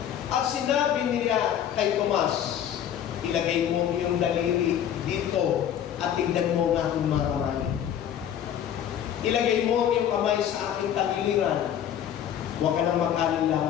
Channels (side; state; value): right; quieter; 9.8 dB